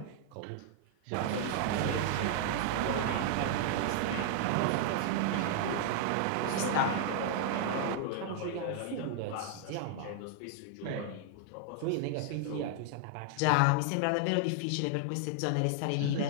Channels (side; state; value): both; different; correlation 0.00